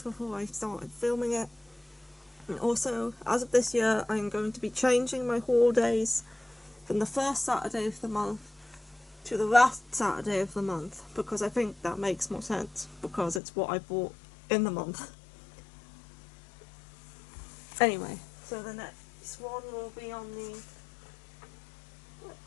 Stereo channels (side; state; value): right; drops out; at 13.4 s